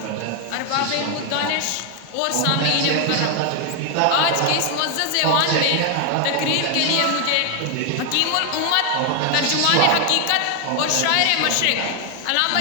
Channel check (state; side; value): different; both; correlation 0.00